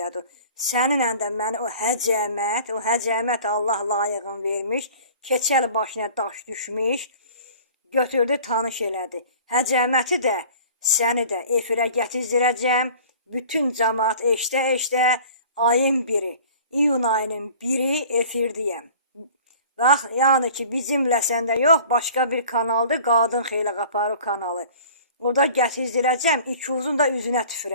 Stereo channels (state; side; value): inverted; both; correlation -0.46